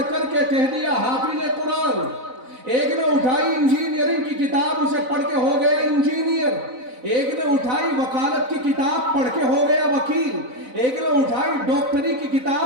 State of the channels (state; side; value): late; left; 4.0 ms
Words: کر کے کہہ دیا حافظ قرآن۔ ایک نے اٹھائی انجینئرنگ کی کتاب، اسے پڑھ کے ہو گیا انجینئر۔ ایک نے اٹھائی وکالت کی کتاب، پڑھ کے ہو گیا وکیل۔ ایک نے اٹھائی ڈاکٹری کی